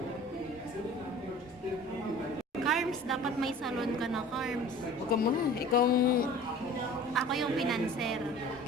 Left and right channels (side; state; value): both; normal; correlation 0.44